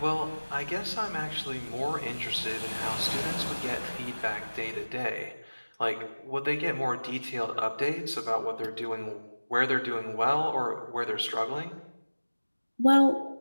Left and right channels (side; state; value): both; inverted; correlation -1.00